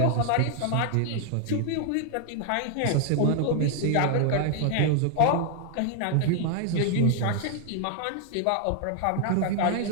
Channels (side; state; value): both; different; correlation 0.00